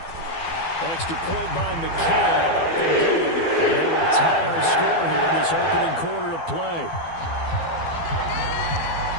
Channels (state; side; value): late; right; 12 ms